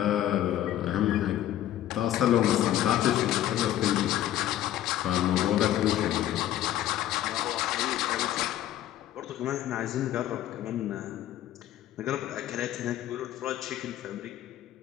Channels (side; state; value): right; quieter; 12.7 dB